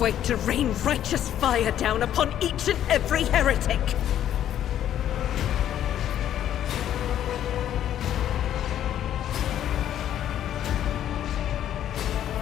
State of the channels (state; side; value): quieter; right; 11.0 dB